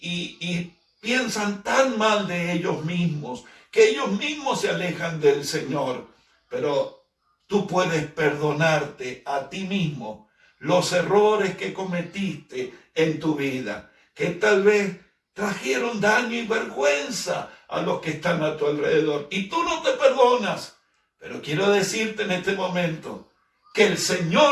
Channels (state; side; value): identical; both; correlation 1.00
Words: piensan tan mal de ellos mismos que ellos mismos se alejan del Señor. Pero tú puedes perdonarte a ti mismo los errores que cometiste en tu vida, que tal vez trajeron daño y vergüenza a los que están a tu alrededor. Y tú no te perdonas. Pero quiero decirte en este momento que el